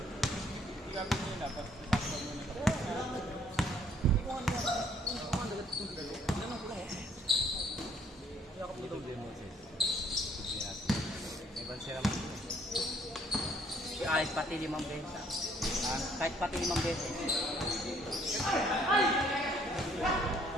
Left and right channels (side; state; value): both; normal; correlation 0.63